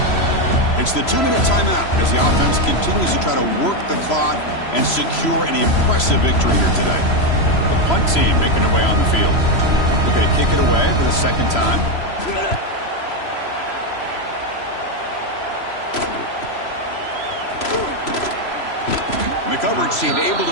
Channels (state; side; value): late; right; 3.0 ms